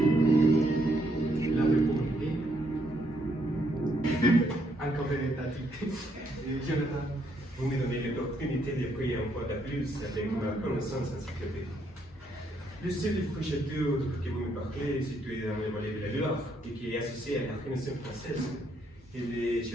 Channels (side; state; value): both; normal; correlation 0.74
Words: La réponse est encore véritablement. Jonathan. Vous me donnez l'opportunité de prier un peu de plus avec ma connaissance encyclopédique. Le seul château que vous me parlez est situé dans le vallée de la Loire et qui est associé à la Renaissance française et le